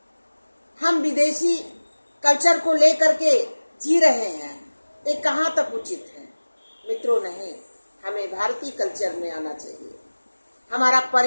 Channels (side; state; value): both; inverted; correlation -1.00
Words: हम विदेशी कल्चर को लेकर के जी रहे हैं, ये कहाँ तक उचित है? मित्रों, नहीं, हमें भारतीय कल्चर में आना चाहिए। हमारा